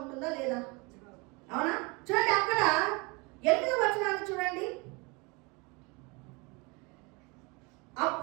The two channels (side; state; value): left; quieter; 28.0 dB